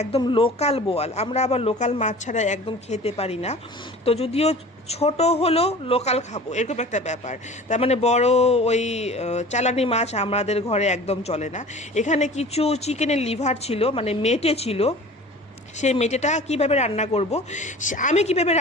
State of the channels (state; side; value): normal; both; correlation 0.41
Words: একদম লোকাল বোয়াল। আমরা আবার লোকাল মাছ ছাড়া একদম খেতে পারি না। তো যদিও ছোট হলো লোকাল খাবো, এরকম একটা ব্যাপার। তার মানে বড় ওই চালানি মাছ আমাদের ঘরে একদম চলে না। এখানে কিছু চিকেনের লিভার ছিল, মানে মেটে ছিল। সেই মেটেটা কীভাবে রান্না করব, আমি কিভাবে